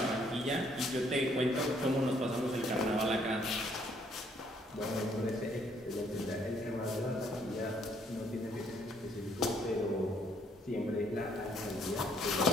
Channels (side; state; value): both; normal; correlation 0.66